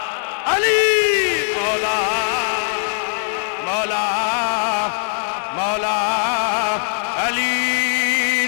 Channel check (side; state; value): right; silent; digital silence